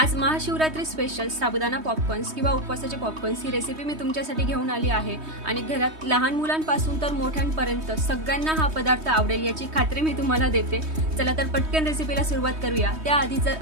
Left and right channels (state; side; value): late; left; 3.2 ms